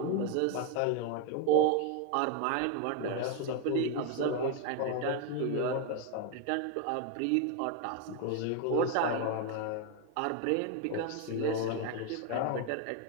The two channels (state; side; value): different; both; correlation 0.01